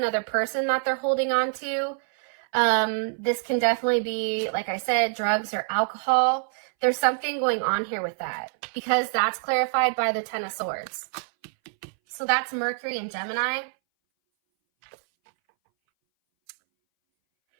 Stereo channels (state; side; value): silent; left; 60 dB below the other